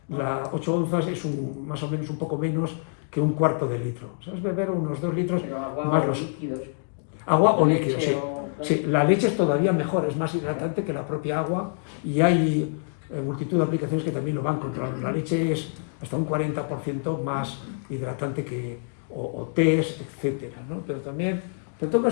8 onzas es más o menos un poco menos que un cuarto de litro. ¿Sabes? Beber unos 2 litros más los líquidos. Agua o líquidos, sí. Sí. La leche es todavía mejor, es más hidratante que la propia agua, y hay multitud de aplicaciones que también lo van controlando. La leche es hasta un 40% más hidratante que o tés, etcétera, ¿no? Pero también, en todo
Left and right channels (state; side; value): silent; right; digital silence